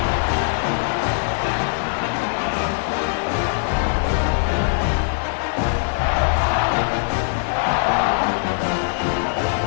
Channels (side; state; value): right; silent; digital silence